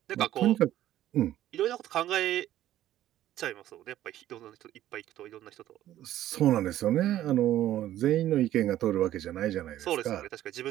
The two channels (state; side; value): quieter; left; 13.0 dB